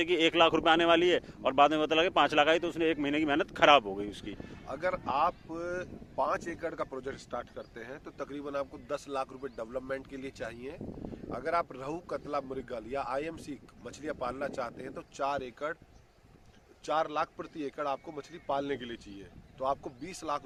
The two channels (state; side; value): identical; both; correlation 1.00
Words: कि 1 लाख रुपए आने वाली है और बाद में पता लगे 5 लाख आई तो उसने 1 महीने की मेहनत खराब हो गई उसकी। अगर आप 5 एकड़ का प्रोजेक्ट स्टार्ट करते हैं तो तकरीबन आपको 10 लाख रुपए डेवलपमेंट के लिए चाहिए। अगर आप रहू, कतला, मृगल या आईएमसी मछलियां पालना चाहते हैं तो 4 लाख प्रति एकड़ आपको मछली पालने के लिए चाहिए। तो आपको 20 लाख